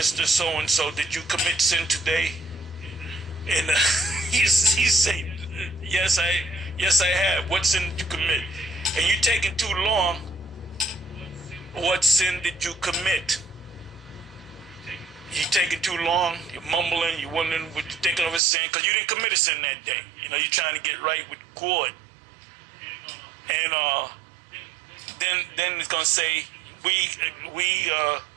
So-and-so, did you commit sin today? And he said, yes, I have. What sin did you commit? And you taking too long. What sin did you commit? You taking too long. You're mumbling. You're wondering what you're thinking of a sin because you didn't commit a sin that day. You know, you're trying to get right with God. And then it's gonna say we can. Oh,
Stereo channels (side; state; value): left; drops out; at 18.4 s